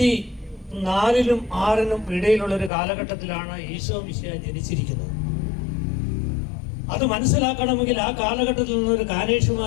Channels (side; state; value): right; drops out; at 2.7 s